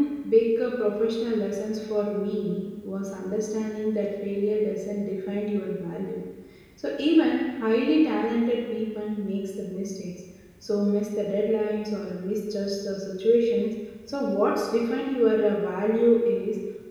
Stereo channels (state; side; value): identical; both; correlation 1.00